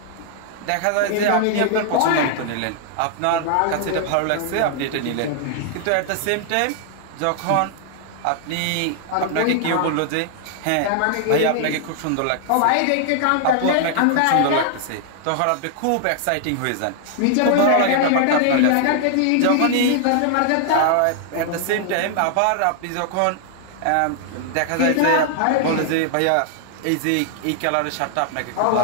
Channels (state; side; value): different; both; correlation 0.00